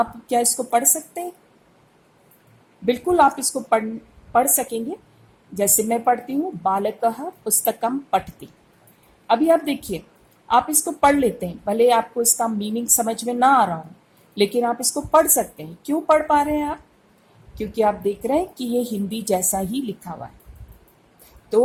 क्या इसको पढ़ सकते हैं? बिल्कुल आप इसको पढ़ सकेंगे। जैसे मैं पढ़ती हूँ, बालकः पुस्तकम पठति। अभी आप देखिए, आप इसको पढ़ लेते हैं, भले आपको इसका मीनिंग समझ में ना आ रहा हो, लेकिन आप इसको पढ़ सकते हैं। क्यों पढ़ पा रहे हैं आप? क्योंकि आप देख रहे हैं कि ये हिंदी जैसा ही लिखा हुआ है।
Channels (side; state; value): both; identical; correlation 1.00